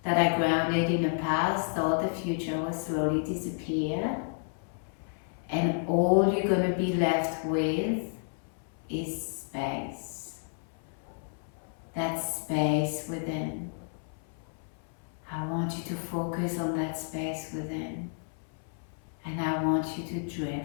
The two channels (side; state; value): right; silent; 57 dB below the other